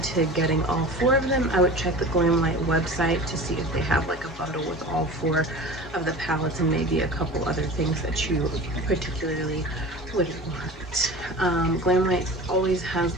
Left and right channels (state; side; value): normal; both; correlation 0.36